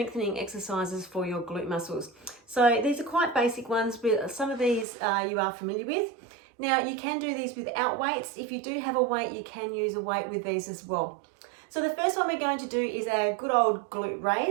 exercises for your glute muscles. So these are quite basic ones, but some of these you are familiar with. Now you can do these without weights. If you do have a weight, you can use a weight with these as well. So the first one we're going to do is our good old glute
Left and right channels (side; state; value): left; drops out; at 4.9 s